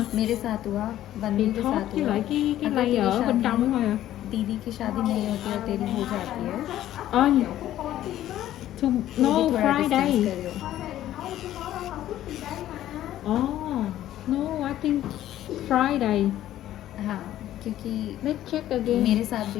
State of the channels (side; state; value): right; quieter; 13.0 dB